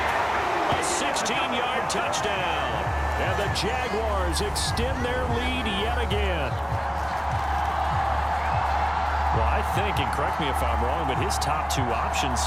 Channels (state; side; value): identical; both; correlation 1.00